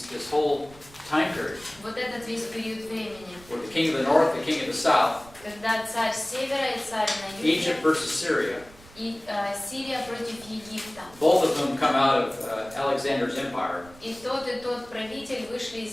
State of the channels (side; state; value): right; noise; rumble, 22 dB below the sound